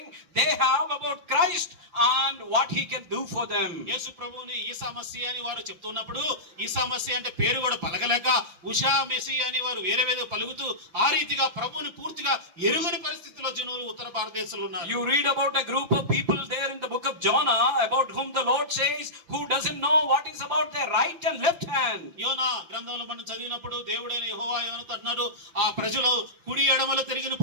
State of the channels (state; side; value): late; left; 5.9 ms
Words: they have about Christ and what he can do for them. యేసు ప్రభువుని ఈసా మసీహ్ అని వారు చెప్తున్నప్పుడు ఈసా మసీహ్ అంటే పేరు కూడా పలకలేక ఉషా మెసీహ్ అని వారు వేరే పలుకుతూ ఆ రీతిగా ప్రభువుని పూర్తిగా ఎరుగని పరిస్థితిలో జనులు ఉత్తర భారతదేశంలో ఉన్నారు. You read about a group of people there in the book of Jonah about whom the Lord says who doesn't know what is about their right and left hand. యోనా గ్రంథంలో మనం చదివినప్పుడు దేవుడైన యెహోవా యోనాతో అన్నారు ఆ ప్రజలు కుడి ఎడమలు తిరిగిన